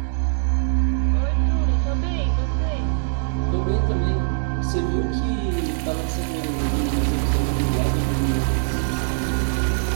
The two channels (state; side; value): silent; left; 64 dB below the other